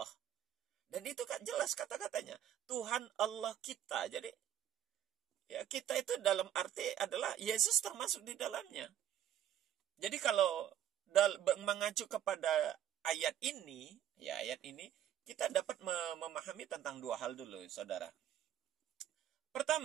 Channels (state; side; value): quieter; left; 10.8 dB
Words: Dan itu kan jelas kata-katanya. Tuhan Allah kita. Jadi ya kita itu dalam arti adalah Yesus termasuk di dalamnya. Jadi kalau mengacu kepada ayat ini, kita dapat memahami tentang dua hal dulu, saudara.